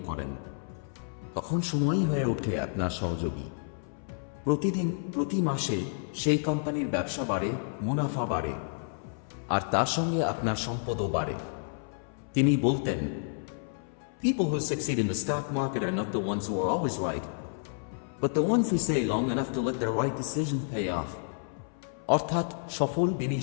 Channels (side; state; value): right; silent; 58 dB below the other